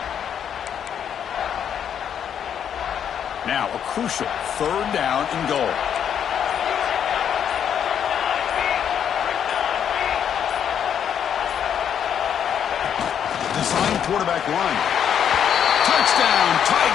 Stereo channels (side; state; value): right; quieter; 8.7 dB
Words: Now a crucial third down and goal. Design quarterback run. Touchdown,